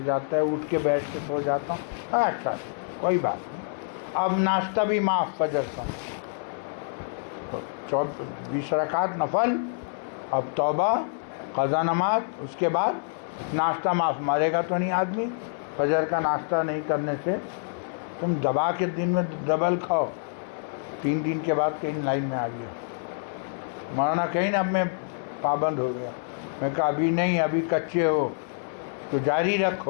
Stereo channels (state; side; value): silent; right; 56 dB below the other